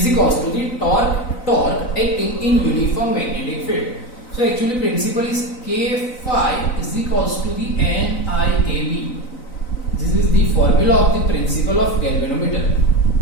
equals to the torque acting in uniform magnetic field. So actually principle is K phi is equals to the NIAB. This is the formula of the principle of galvanometer.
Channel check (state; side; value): late; right; 3.9 ms